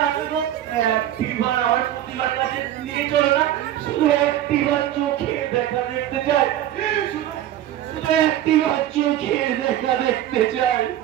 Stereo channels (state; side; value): quieter; left; 12.2 dB